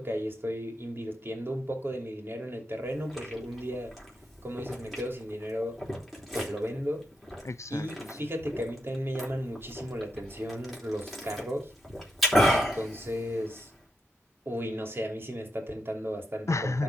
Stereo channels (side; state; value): both; normal; correlation 0.84